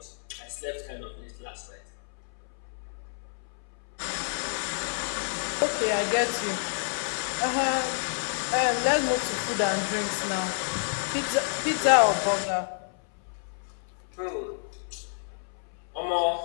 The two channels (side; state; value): right; silent; 58 dB below the other